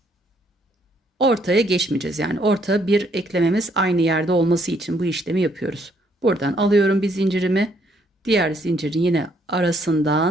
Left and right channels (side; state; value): both; normal; correlation 0.69